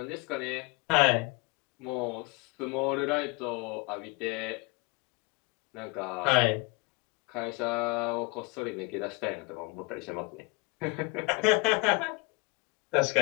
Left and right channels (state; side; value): quieter; right; 27.8 dB